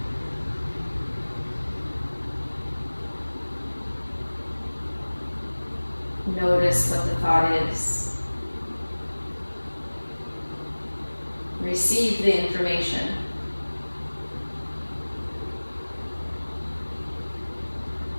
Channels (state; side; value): inverted; both; correlation -1.00